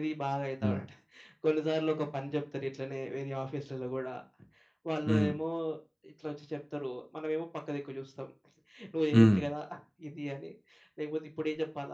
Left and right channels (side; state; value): both; identical; correlation 1.00